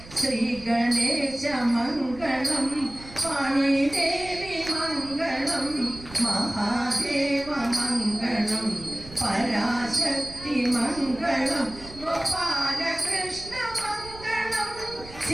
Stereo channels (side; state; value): right; noise; rumble, 18 dB below the sound